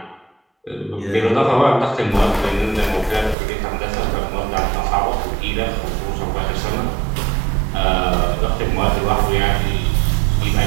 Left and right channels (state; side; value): drops out; left; at 3.4 s